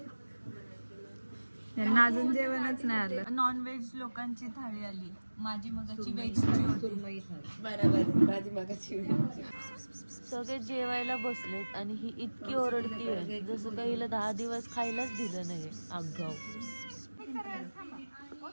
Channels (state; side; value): inverted; both; correlation -1.00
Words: यांना अजून जेवणच नाही आलं. नॉन व्हेज लोकांची थाळी आली. माझी मगाची व्हेजची होती. सगळे जेवायला बसलेत आणि ही इतकी ओरडतीये जसं काही हिला 10 दिवस खायलाच दिलं नाही. आगाऊ.